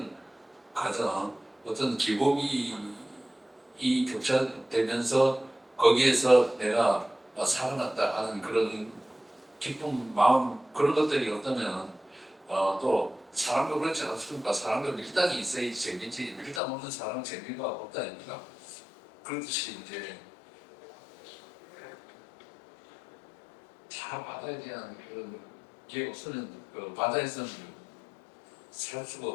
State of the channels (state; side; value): drops out; right; at 16.6 s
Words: 과정 어떤 기복이 교차되면서 거기에서 내가 살아났다 하는 그런 기쁜 마음 그런 것들이 어떠면 또 사람도 그렇지 않습니까? 사람도 밀당이 있어야지 재미지 밀당 없는 사람은 재미가 없다 아닙니까? 그렇듯이 이제 다 바다에 대한 그런 게 없으면 그 바다에서는 살 수가